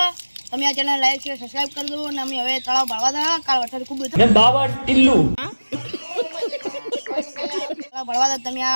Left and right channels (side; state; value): both; inverted; correlation -1.00